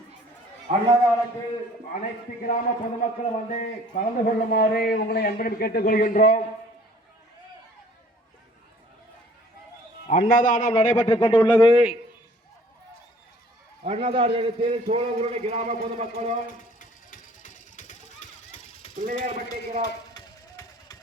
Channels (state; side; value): normal; both; correlation 0.54